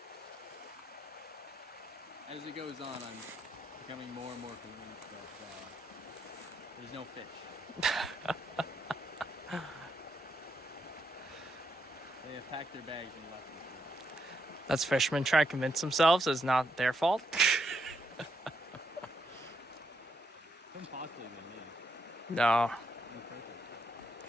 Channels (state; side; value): normal; both; correlation 0.79